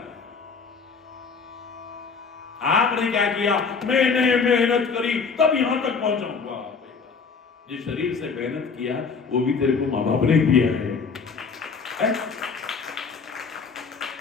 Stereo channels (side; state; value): right; quieter; 5.2 dB